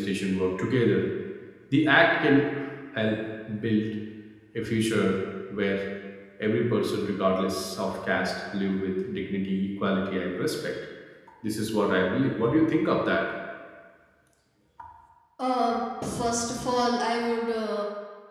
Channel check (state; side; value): identical; both; correlation 1.00